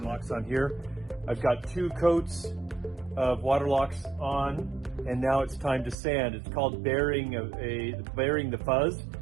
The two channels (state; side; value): drops out; left; at 6.0 s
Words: locks on here. I've got 2 coats of water locks on, and now it's time to sand. It's called burying the fuzz.